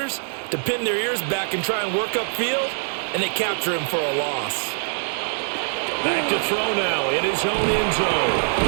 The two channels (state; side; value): silent; left; digital silence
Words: to pin their ears back and try and work upfield, and they capture him for a loss. Back to throw now in his own end zone.